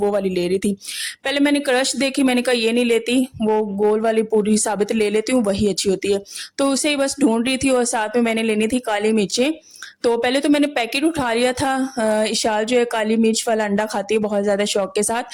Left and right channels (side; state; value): both; identical; correlation 1.00